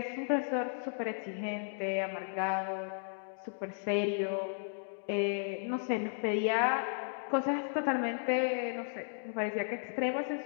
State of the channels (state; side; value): silent; right; digital silence